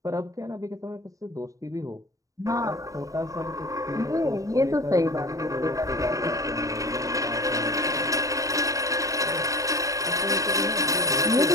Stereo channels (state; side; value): late; left; 0.16 ms